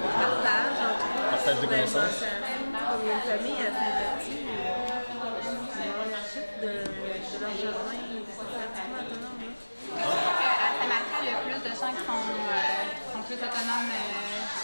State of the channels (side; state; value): both; inverted; correlation -1.00